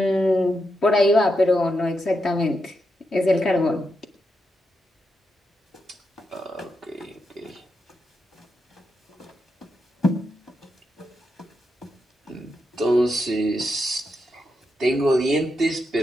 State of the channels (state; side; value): normal; both; correlation 0.84